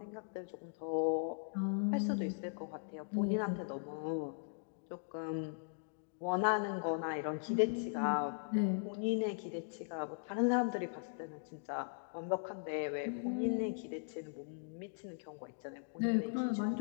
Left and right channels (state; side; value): silent; right; digital silence